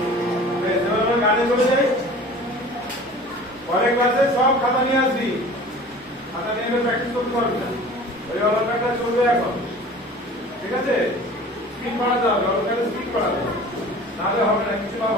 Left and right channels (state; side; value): normal; both; correlation 0.43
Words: বেশ, এবার আমরা গানে চলে যাই। পরের ক্লাসে সব খাতা নিয়ে আসবি, খাতা নিয়ে এলে প্র্যাকটিস করতে পারবি না। ওই অলঙ্কারটা চলবে এখন, ঠিক আছে? স্পিড বাড়াতে হবে, অলঙ্কারে স্পিড বাড়াতে হবে, নাহলে হবে না, কিছু লাভ